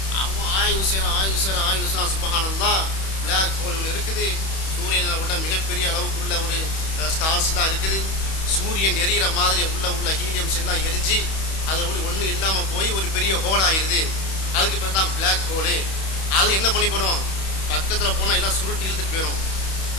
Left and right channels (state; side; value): late; right; 31 ms